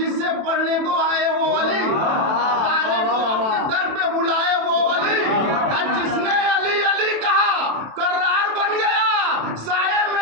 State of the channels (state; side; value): late; left; 27 ms